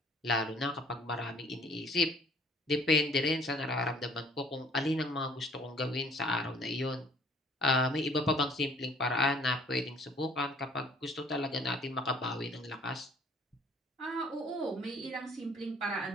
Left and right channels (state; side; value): normal; both; correlation 0.57